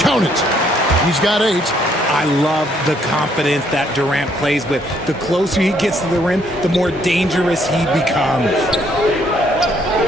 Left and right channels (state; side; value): normal; both; correlation 0.68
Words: it. He's got 8. I love the confidence that Durant plays with. The closer he gets to the rim, the more dangerous he becomes.